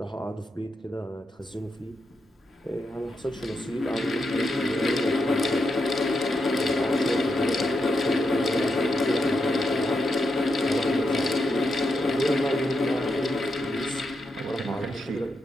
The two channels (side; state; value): both; normal; correlation 0.84